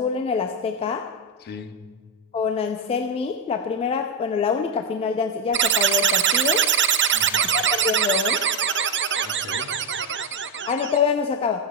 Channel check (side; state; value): both; normal; correlation 0.04